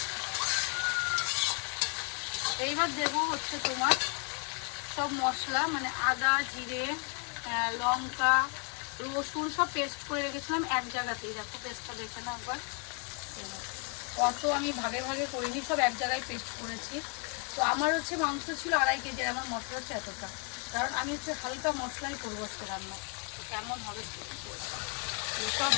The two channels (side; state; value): right; quieter; 36.9 dB